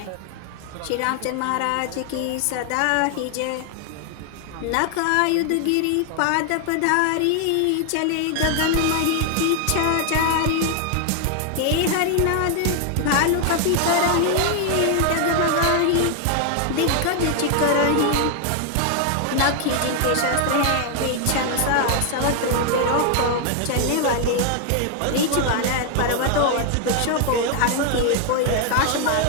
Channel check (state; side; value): different; both; correlation 0.00